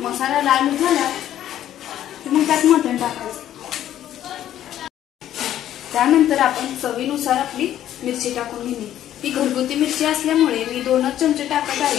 लाल झाला की मग त्यात मटण टाकायचं। त्यानंतर आपण चवीनुसार आपली मिरची टाकून घेणे। ही घरगुती मिरची असल्यामुळे मी 2च चमचे टाकत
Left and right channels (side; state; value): right; quieter; 11.8 dB